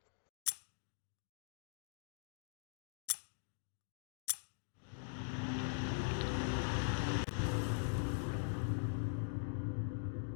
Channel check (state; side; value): silent; right; digital silence